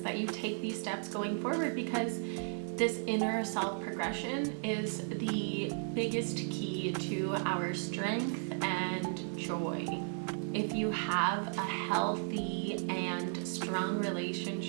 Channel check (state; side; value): silent; left; 54 dB below the other